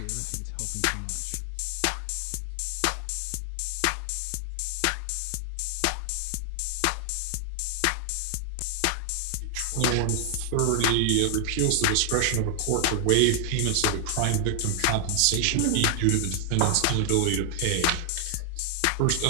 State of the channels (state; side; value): different; both; correlation 0.00